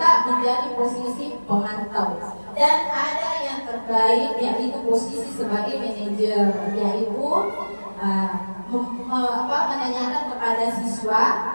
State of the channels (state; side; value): inverted; both; correlation -1.00